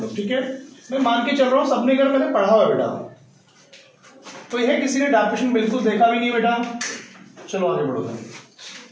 लोग। ठीक है, मैं मान के चल रहा हूं सबने अगर मैंने पढ़ा हुआ बेटा, तो यह किसी ने डेफिनेशन बिल्कुल देखा भी नहीं बेटा। चलो आगे बढ़ो।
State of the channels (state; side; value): identical; both; correlation 1.00